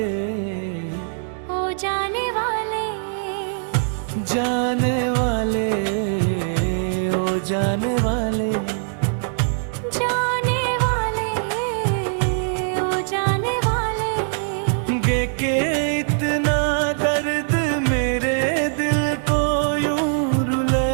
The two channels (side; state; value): left; silent; digital silence